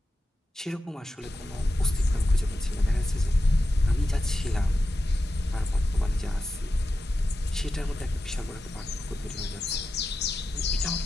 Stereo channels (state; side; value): normal; both; correlation 0.91